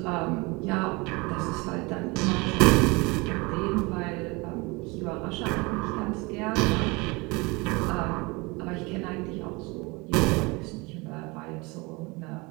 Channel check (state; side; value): quieter; left; 25.9 dB